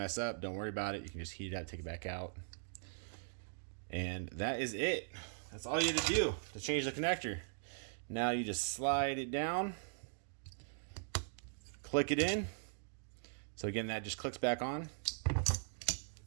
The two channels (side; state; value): left; silent; digital silence